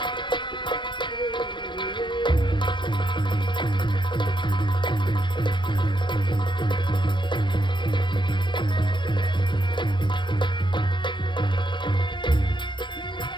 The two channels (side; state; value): right; late; 0.23 ms